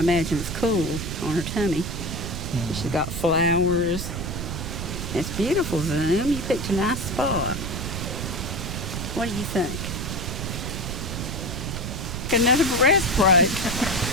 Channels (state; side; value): noise; right; rumble, 5 dB below the sound